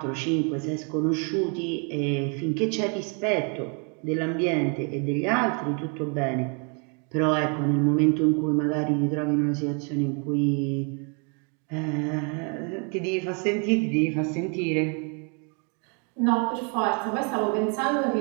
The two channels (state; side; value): quieter; left; 37.2 dB